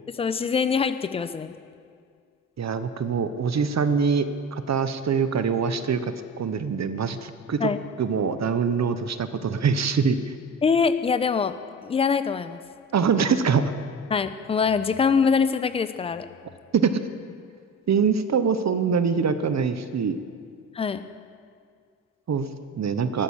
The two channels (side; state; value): both; normal; correlation 0.31